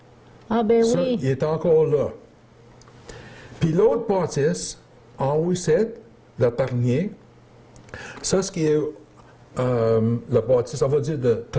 Ah, ben Ça, oui. il est encore là. Puis l'autre bâtisse, en haut ici, le Parnier, ça, ce qui est le bâtisse, on va dire, de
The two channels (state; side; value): identical; both; correlation 1.00